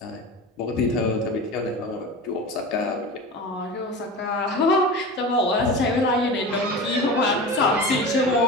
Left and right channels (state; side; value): normal; both; correlation 0.30